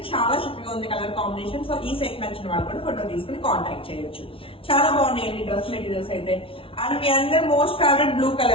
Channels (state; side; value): late; right; 0.26 ms